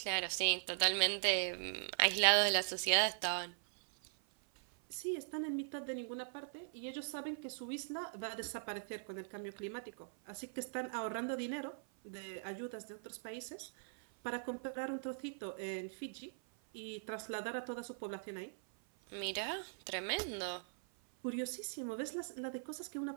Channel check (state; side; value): silent; left; 51 dB below the other